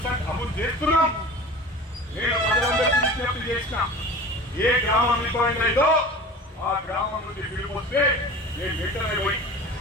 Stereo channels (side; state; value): both; normal; correlation 0.37